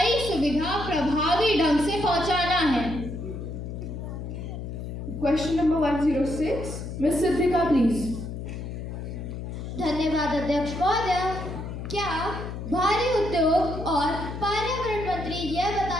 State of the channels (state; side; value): noise; left; hum, 7 dB below the sound